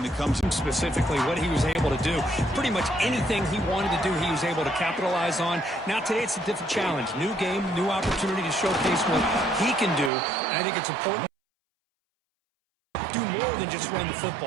that comes specifically what he was able to do. Pretty much anything he wanted to do, he was able to capitalize on. Now today it's a different challenge. New game, new opportunity to showcase what he can do. And I think it's important to do more than just run the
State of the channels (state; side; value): drops out; left; at 10.1 s